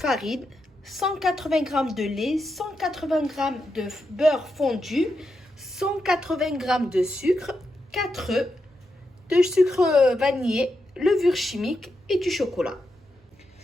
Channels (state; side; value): normal; both; correlation 0.85